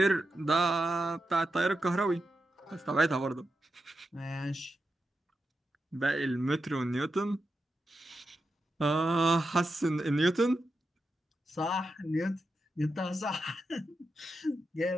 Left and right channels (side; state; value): both; normal; correlation 0.88